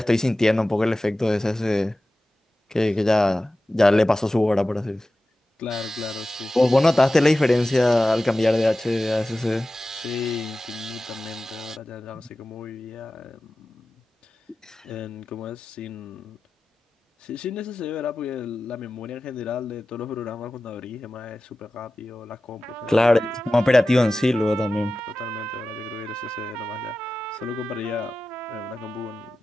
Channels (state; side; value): normal; both; correlation 0.95